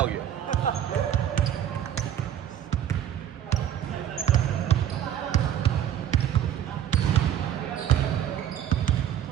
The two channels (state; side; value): quieter; left; 10.4 dB